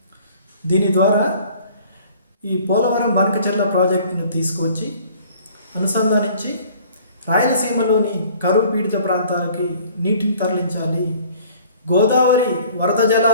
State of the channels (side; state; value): both; inverted; correlation -0.53